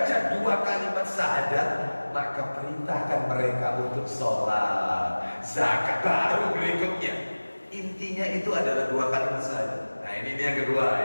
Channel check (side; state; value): both; inverted; correlation -1.00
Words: dua kalimat syahadat, maka perintahkan mereka untuk sholat, zakat. Baru berikutnya, intinya itu adalah dua kalimat syahadat. Nah ini yang kedua